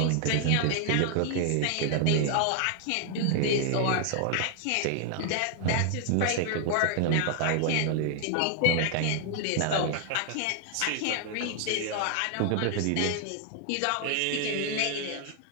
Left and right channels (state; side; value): different; both; correlation 0.00